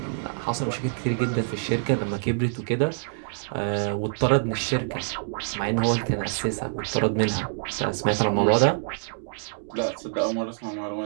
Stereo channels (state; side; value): silent; left; digital silence